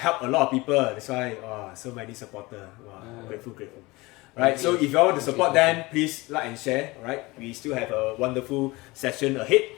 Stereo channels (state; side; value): quieter; right; 22.3 dB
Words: a lot of people. That's why, so many supporters. Grateful. Right, so if you all want to support them, please like and share. Alright, we still have a wonderful session ahead.